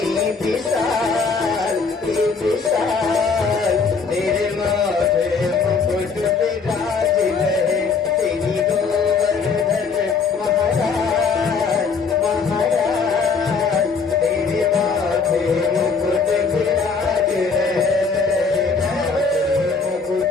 विशाल, विशाल, तेरे माथे मुकुट विराज रहे। तेरी गोवर्धन महाराज, महाराज, तेरे माथे मुकुट विराज रहे। मुकुट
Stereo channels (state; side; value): quieter; right; 5.0 dB